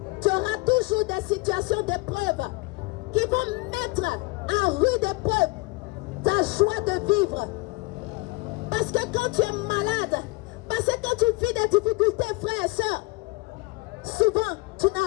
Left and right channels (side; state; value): right; quieter; 24.5 dB